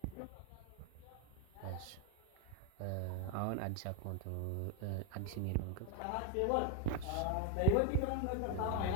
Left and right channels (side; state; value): both; different; correlation 0.02